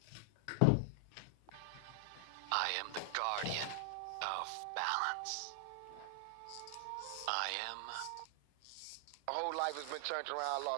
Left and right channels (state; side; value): different; both; correlation 0.00